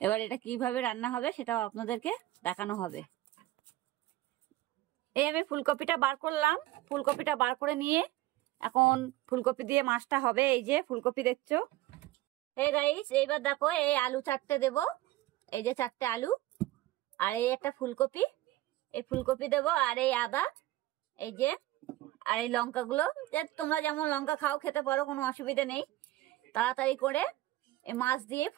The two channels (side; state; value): left; quieter; 16.7 dB